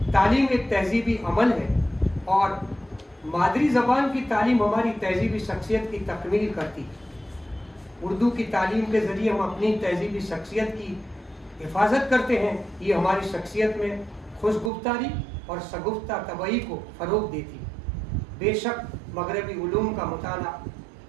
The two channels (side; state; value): left; drops out; at 14.7 s